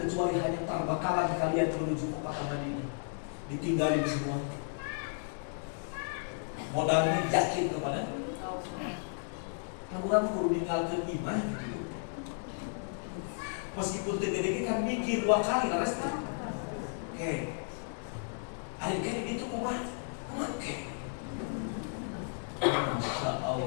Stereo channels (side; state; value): right; silent; digital silence